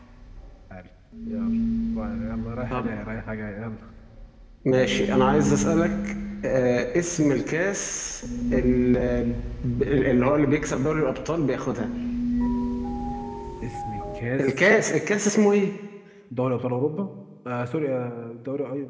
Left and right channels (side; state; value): both; identical; correlation 1.00